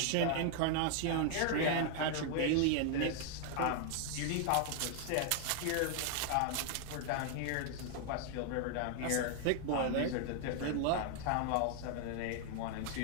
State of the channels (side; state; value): both; different; correlation 0.00